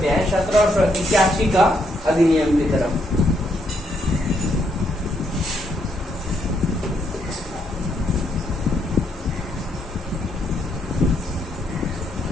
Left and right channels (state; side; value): normal; both; correlation 0.75